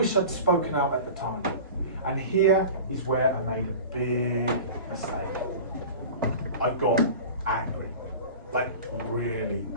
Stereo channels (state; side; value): inverted; both; correlation -0.36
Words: I'd spoken out at the time. And here is where I made a big mistake. I got angry, like really